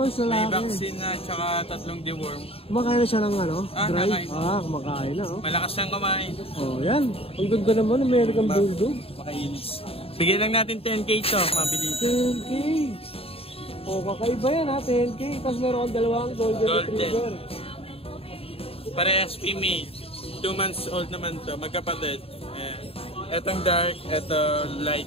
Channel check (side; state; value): right; late; 0.28 ms